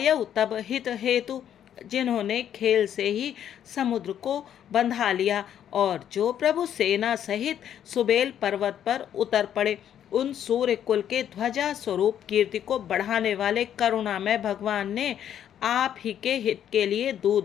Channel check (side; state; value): right; quieter; 9.9 dB